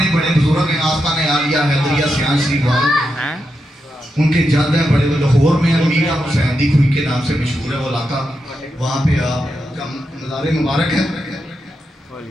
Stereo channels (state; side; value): normal; both; correlation 0.86